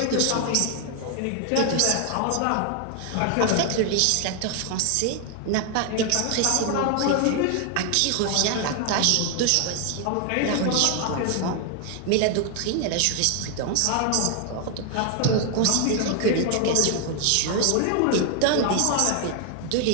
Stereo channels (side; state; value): both; different; correlation 0.01